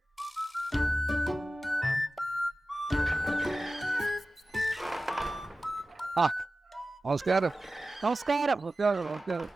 ആ, നമസ്കാരം. നമസ്കാരം. നമസ്കാരം. നമസ്കാരം.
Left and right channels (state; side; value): normal; both; correlation 0.95